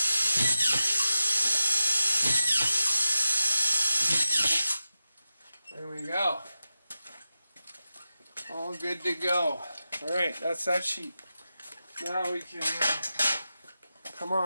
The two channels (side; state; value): both; inverted; correlation -0.93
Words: There we go. All good to go. Alright, that's that sheet. Now we can come